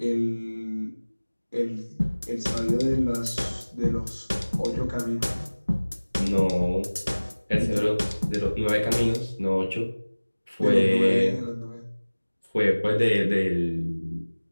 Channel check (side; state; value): both; inverted; correlation -1.00